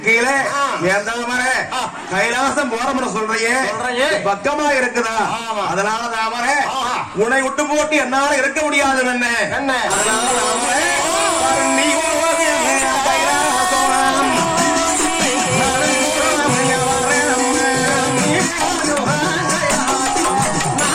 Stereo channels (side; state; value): both; identical; correlation 1.00